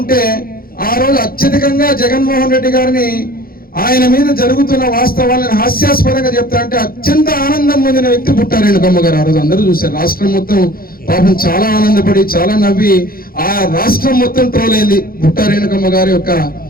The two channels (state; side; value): late; right; 0.43 ms